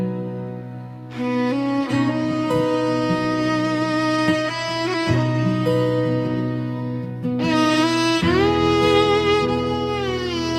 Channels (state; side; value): identical; both; correlation 1.00